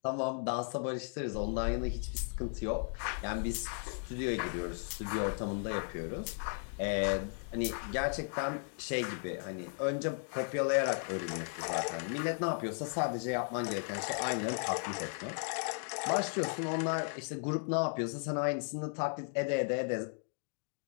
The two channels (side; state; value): right; silent; 54 dB below the other